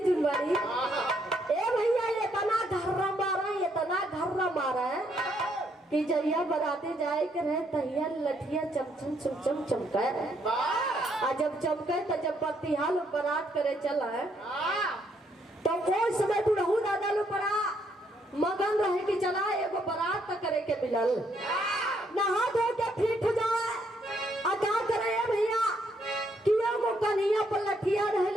जुनवारी ए भैया ये तना घर्रा मारा है कि जहिया बराते जाए के रहे तहिया लठिया चमचम चमचम चमका आ जब चमके तो जब बत्तीहाल बारात करे चला है तो वो समय बुढ़ऊ दादा लो पड़ा मगन रहे कि चला एगो बारात तक करे के मिलल नहा धो के फिट हो जाए आ क्या करे भैया कि एगो कन्हैया पर लठिया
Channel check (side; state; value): both; normal; correlation 0.72